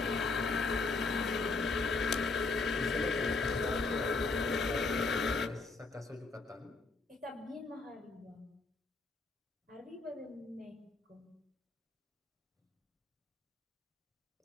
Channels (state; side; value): quieter; right; 3.9 dB